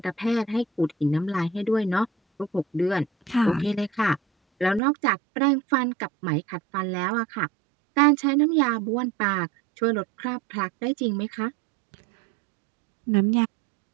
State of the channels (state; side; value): drops out; left; at 4.8 s